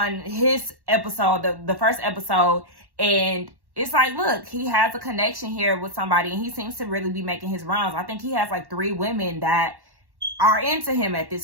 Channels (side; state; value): left; late; 1.1 ms